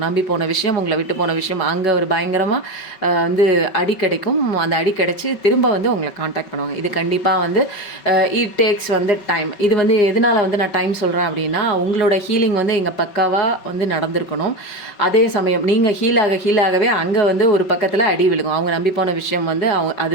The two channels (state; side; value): late; right; 5.3 ms